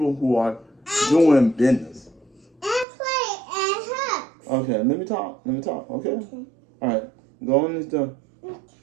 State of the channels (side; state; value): left; drops out; at 2.9 s